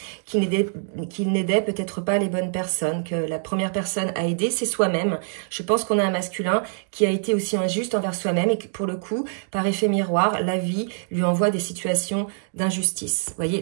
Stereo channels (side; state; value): left; silent; digital silence